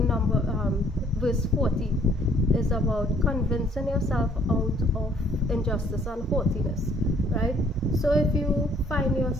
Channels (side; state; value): both; normal; correlation 0.62